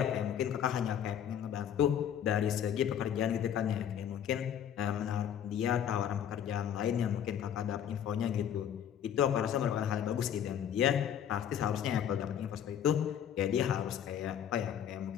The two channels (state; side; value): quieter; right; 9.5 dB